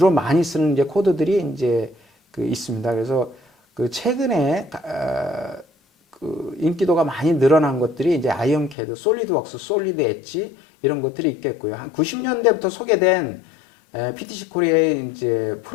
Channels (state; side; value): drops out; right; at 8.8 s